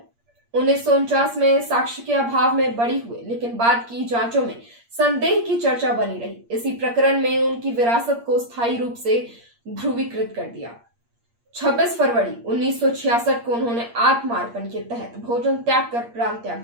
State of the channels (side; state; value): left; late; 8.6 ms